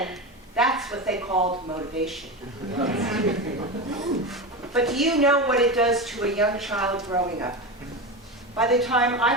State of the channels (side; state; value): both; normal; correlation 0.21